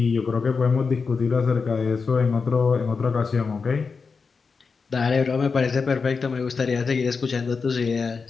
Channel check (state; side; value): quieter; right; 5.0 dB